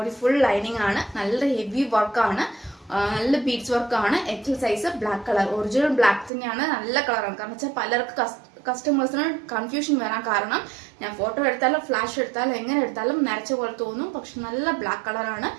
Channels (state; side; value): drops out; left; at 6.3 s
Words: full lining ആണ്. നല്ല ഹെവി വർക്കാണ്. നല്ല ബീഡ്സ് വർക്കാണ്. XL size black colour. Original black തന്നെയാണ്. നല്ല കളറാണ്. കാരണം വെച്ചാൽ പലർക്ക് കസ്റ്റമേഴ്സിന് കൺഫ്യൂഷൻ വരാൻ കാരണം ഞാൻ ഫോട്ടോ എടുത്താലും ഫ്ലാഷ് എടുത്താലും എങ്ങനെ എടുത്താലും നരച്ച പോലെ തോന്നും. പക്ഷെ നല്ല ബ്ലാക്ക് കളറാണ്.